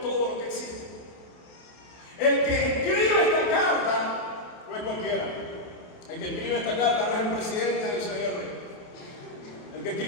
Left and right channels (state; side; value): late; right; 28 ms